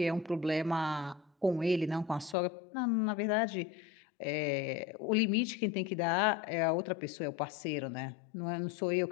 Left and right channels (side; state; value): right; drops out; at 2.4 s